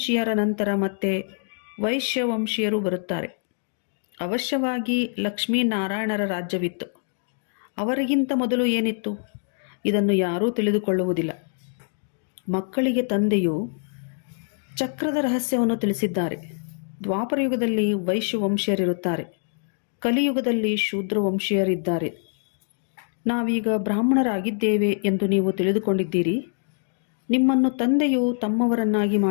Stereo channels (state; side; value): silent; right; digital silence